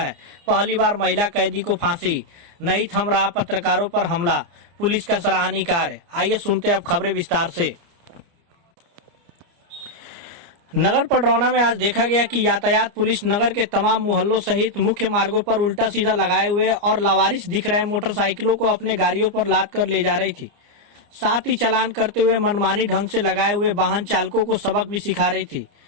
पहली बार महिला कैदी को फांसी। नहीं थम रहा पत्रकारों पर हमला, पुलिस का सराहनीय कार्य। आइए सुनते हैं अब खबरें विस्तार से। नगर पडरौना में आज देखा गया कि यातायात पुलिस नगर के तमाम मोहल्लों सहित मुख्य मार्गों पर उल्टा सीधा लगाए हुए और लावारिस दिख रहे मोटरसाइकिलों को अपने गाड़ियों पर लाद कर ले जा रही थी। साथ ही चालान करते हुए मनमानी ढंग से लगाए हुए वाहन चालकों को सबक भी सिखा रही थी।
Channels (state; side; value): late; left; 29 ms